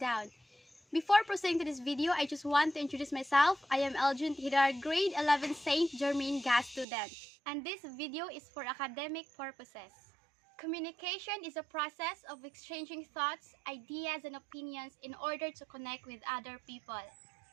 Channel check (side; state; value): left; drops out; at 6.9 s